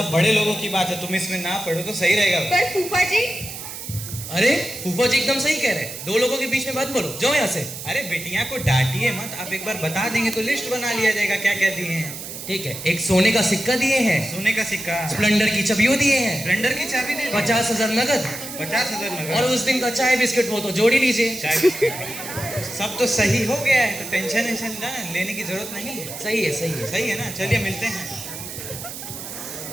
बड़े लोगों की बात है, तुम इसमें ना पढ़ो तो सही रहेगा। पर फूफा जी। अरे फूफा जी एकदम सही कह रहे हैं, 2 लोगों के बीच में बात बोलो, जाओ यहाँ से। अरे बेटियां को डांटिए मत, आप एक बार बता देंगे तो लिस्ट बना लिया जाएगा क्या क्या दिए हैं। ठीक है, एक सोने का सिक्का दिए हैं, सोने का सिक्का, स्प्लेंडर की चाबियों दिए हैं, स्प्लेंडर की चाबी दे 50,000 नगद, 50,000 नगद, और उस दिन का चाय बिस्किट वो तो जोड़ ही लीजिए। चाय बिस्किट सब तो सही हो गया है, तो टेंशन ना लेने की जरूरत नहीं है। सही है सही है ना। चलिए मिलते हैं।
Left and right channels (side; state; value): right; noise; hiss, 10 dB below the sound